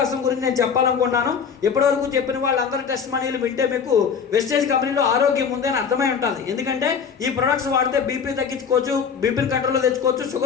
గురించి నేను చెప్పాలనుకున్నాను. ఇప్పటివరకు చెప్పిన వాళ్ళందరి టెస్ట్ మనీలు వింటే మీకు వెస్టేజ్ కంపెనీలో ఆరోగ్యం ఉందని అర్థమై ఉంటుంది. ఎందుకంటే ఈ ప్రొడక్ట్స్ వాడితే బీపీ తగ్గించుకోవచ్చు, బీపీని కంట్రోల్లో తెచ్చుకోవచ్చు,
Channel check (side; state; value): right; quieter; 6.6 dB